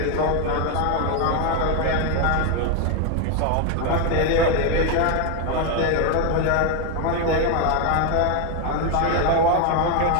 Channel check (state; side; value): different; both; correlation 0.01